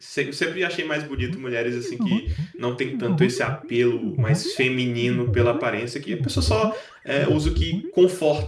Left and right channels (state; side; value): identical; both; correlation 1.00